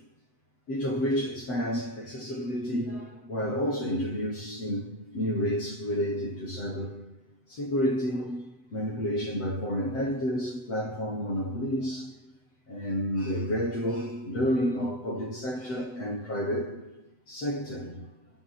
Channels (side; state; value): right; late; 7.9 ms